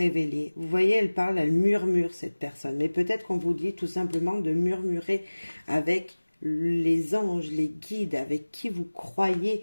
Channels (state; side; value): inverted; both; correlation -1.00